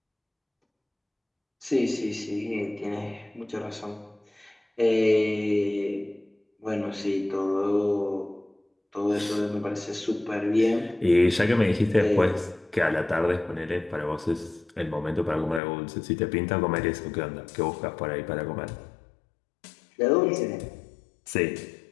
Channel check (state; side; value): drops out; right; at 15.6 s